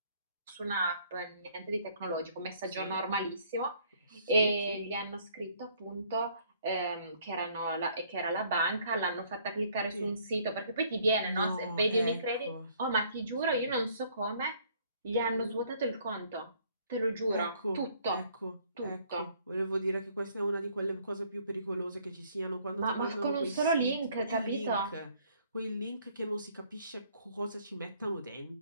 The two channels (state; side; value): inverted; both; correlation -0.62